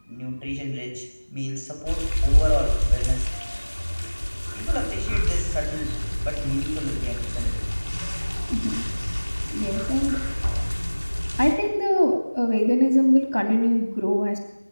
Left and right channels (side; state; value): both; inverted; correlation -1.00